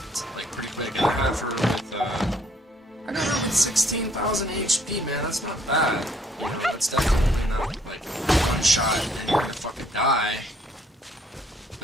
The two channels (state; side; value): normal; both; correlation 0.66